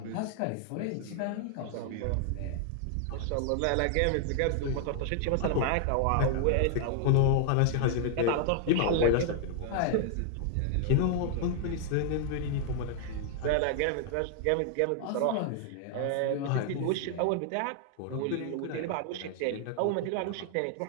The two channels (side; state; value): both; different; correlation 0.00